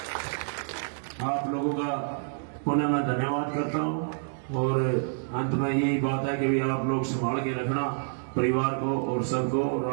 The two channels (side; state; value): left; silent; digital silence